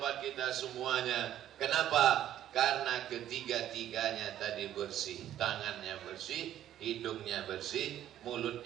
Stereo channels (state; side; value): quieter; left; 11.8 dB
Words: kita semuanya. Kenapa? Karena ketiga-tiganya tadi bersih. Tangannya bersih, hidungnya bersih,